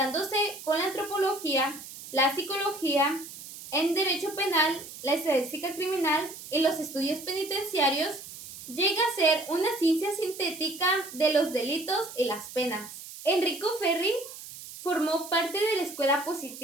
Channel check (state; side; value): noise; right; hiss, 14 dB below the sound